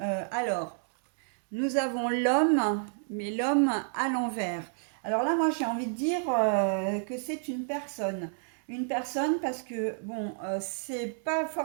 alors, nous avons l'homme, mais l'homme à l'envers. Alors là, moi, j'ai envie de dire que c'est une personne. Une personne parce que, bon, c'est pas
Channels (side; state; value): left; silent; digital silence